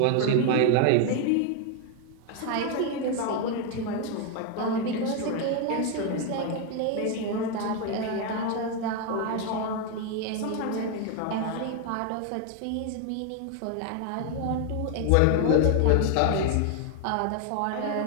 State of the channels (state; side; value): different; both; correlation 0.01